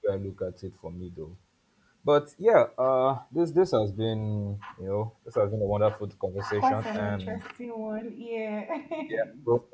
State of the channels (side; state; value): both; identical; correlation 1.00